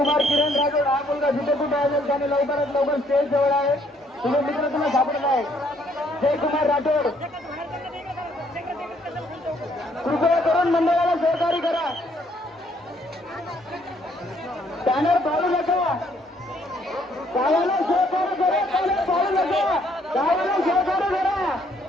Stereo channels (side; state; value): both; normal; correlation 0.67